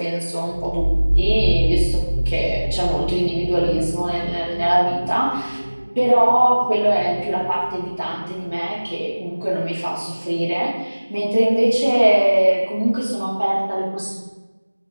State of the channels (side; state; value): both; inverted; correlation -1.00